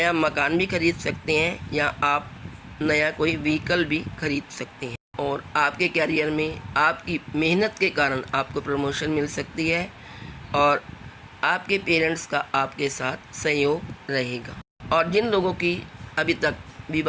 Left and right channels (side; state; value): both; identical; correlation 1.00